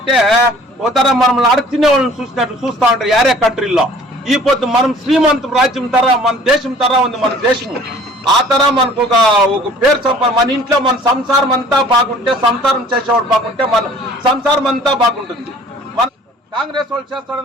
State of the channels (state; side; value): normal; both; correlation 0.51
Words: ఒక తర మనం అడుగుతున్న వాళ్ళని చూసినట్లు చూస్తా ఉంటారు యారే కంట్రీలో. ఈ పొద్దు మనం శ్రీమంత రాజ్యం తర, మన దేశం తర ఉంది మన దేశము. ఆ తర మనకు ఒక పేరు సంపాదన, మన ఇంట్లో మన సంసారం అంతా బాగుంటే, సంసారం చేసేవాడు బాగుంటే మన సంసారం అంతా బాగుంటుంది. మన కాంగ్రెస్ వాళ్ళు